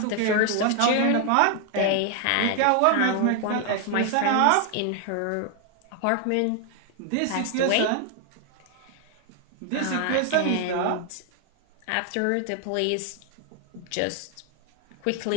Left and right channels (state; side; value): different; both; correlation 0.00